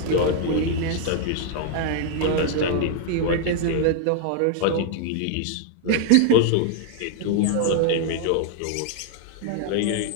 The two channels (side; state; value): both; different; correlation 0.00